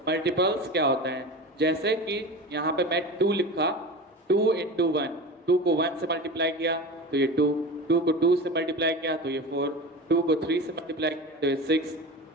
Multiples क्या होता है? जैसे कि यहाँ पे मैं 2 लिखा, 2 into 1, 2 को 1 से मल्टीप्लाई किया तो ये 2, 2 को 2 से मल्टीप्लाई किया तो ये 4, 2 को 3 से मल्टीप्लाई किया तो ये 6,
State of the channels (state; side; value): normal; both; correlation 0.30